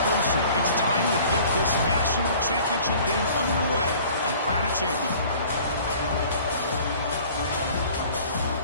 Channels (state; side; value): inverted; both; correlation -0.49